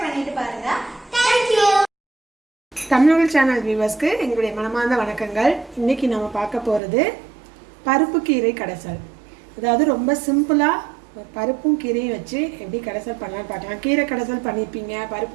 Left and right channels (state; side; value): drops out; left; at 6.8 s